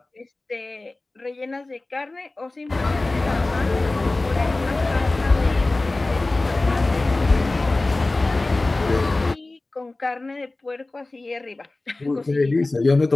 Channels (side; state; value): right; quieter; 3.0 dB